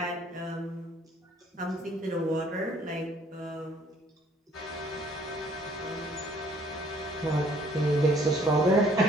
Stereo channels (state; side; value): normal; both; correlation 0.60